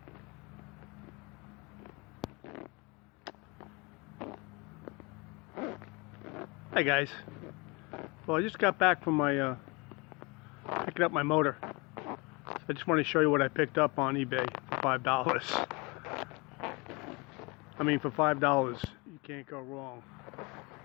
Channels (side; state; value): right; quieter; 27.5 dB